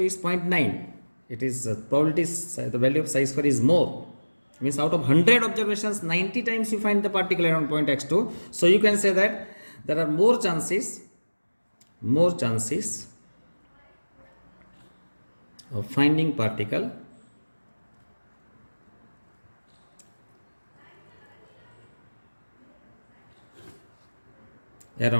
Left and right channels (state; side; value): inverted; both; correlation -1.00